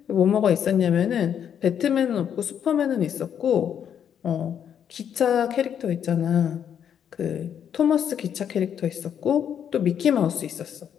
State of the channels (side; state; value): right; quieter; 8.7 dB